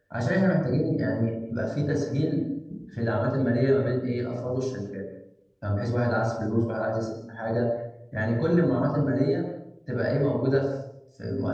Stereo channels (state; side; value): identical; both; correlation 1.00